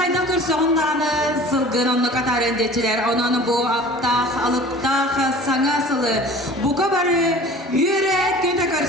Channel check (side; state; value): both; normal; correlation 0.43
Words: көрсе ондағаны сылғын онны қатар өндетчілер. Онаны бұл аптақ, алыптақ, саңа сылы. Бұқа бары үйерек көте